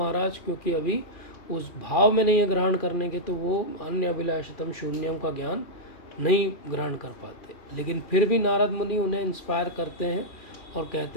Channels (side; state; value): right; late; 2.4 ms